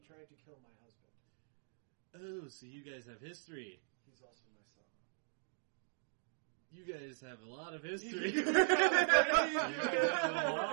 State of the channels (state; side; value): silent; left; digital silence